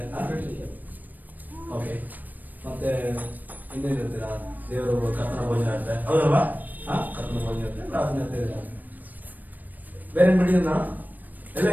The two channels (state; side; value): late; left; 0.085 ms